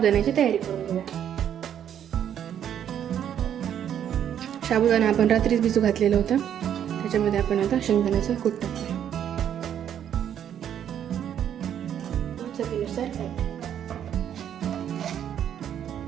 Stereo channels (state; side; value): quieter; left; 9.6 dB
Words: तयारी करून घेऊया. साबुदाणा आपण रात्रीच भिजू घातलेला होता. त्याच्यामध्ये आपण आता शेंगदाण्याचं कूट टाकूया. चवीनुसार